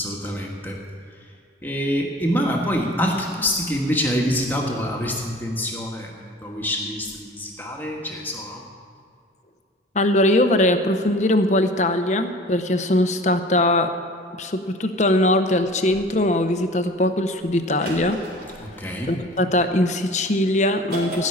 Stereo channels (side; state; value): both; normal; correlation 0.43